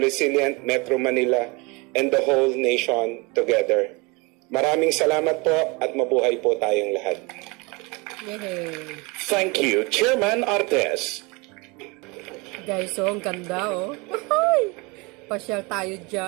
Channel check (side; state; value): left; quieter; 27.5 dB